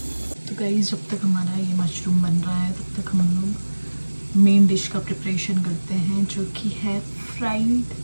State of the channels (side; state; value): both; inverted; correlation -1.00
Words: गाइस जब तक हमारा ये मशरूम बन रहा है तब तक हम लोग मेन डिश का प्रिपरेशन करते हैं, जो कि है फ्राइड